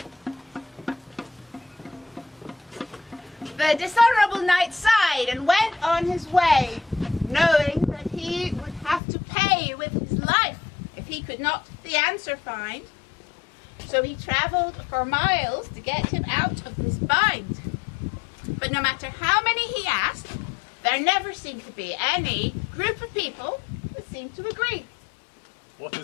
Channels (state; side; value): drops out; right; at 9.0 s